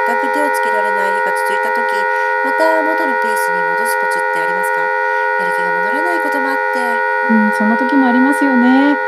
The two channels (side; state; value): both; identical; correlation 1.00